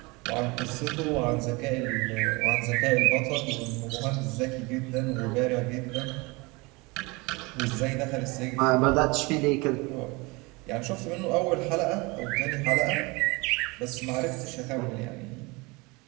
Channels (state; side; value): quieter; left; 25.6 dB